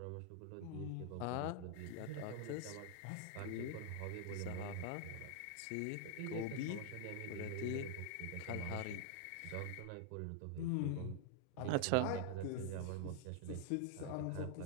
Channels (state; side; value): different; both; correlation 0.00